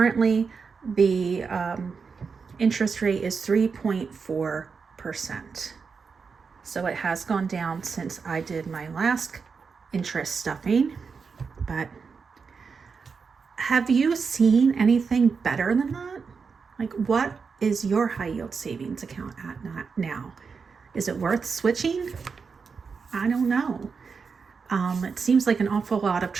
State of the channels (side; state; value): left; quieter; 5.4 dB